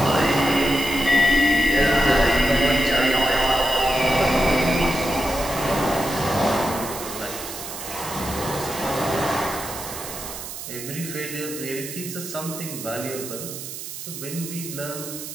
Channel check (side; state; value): right; noise; hiss, 9 dB below the sound